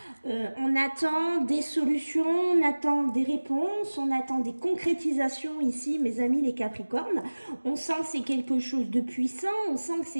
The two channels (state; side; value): inverted; both; correlation -1.00